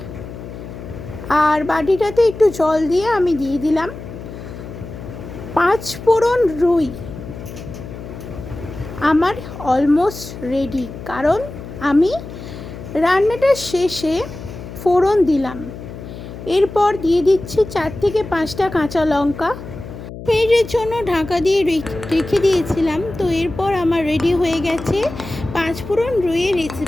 আর বাটিটাতে একটু জল দিয়ে আমি দিয়ে দিলাম 5 ফোড়ন রুই। আমার অলমোস্ট রেডি, কারণ আমি রান্নাটার শেষে ফোড়ন দিলাম। এরপর দিয়ে দিচ্ছি 4 থেকে 5টা কাঁচা লঙ্কা। মিনিটের জন্য ঢাকা দিয়ে রেখে দিয়েছিলাম। তো এরপর আমার রেডি হয়ে গেছে 5 ফোড়ন রুইয়ের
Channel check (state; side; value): noise; left; hum, 12 dB below the sound